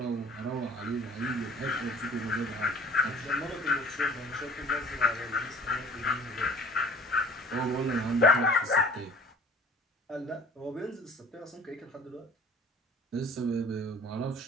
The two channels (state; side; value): normal; both; correlation 0.49